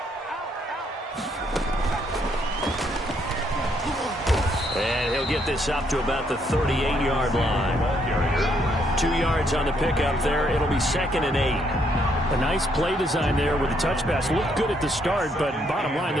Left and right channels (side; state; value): both; normal; correlation 0.72